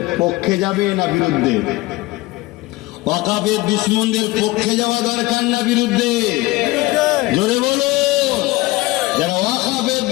পক্ষে যাবে না বিরুদ্ধে? ওয়াকাফের দুশ্মনদের পক্ষে যাওয়া দরকার না বিরুদ্ধে? জোরে বলো। যারা ওয়াকাফের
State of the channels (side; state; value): right; quieter; 20.2 dB